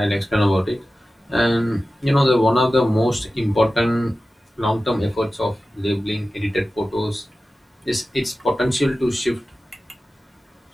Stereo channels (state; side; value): normal; both; correlation 0.95